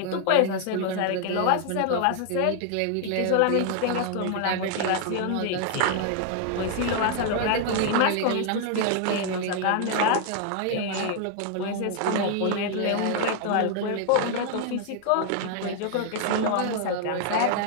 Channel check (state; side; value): different; both; correlation 0.00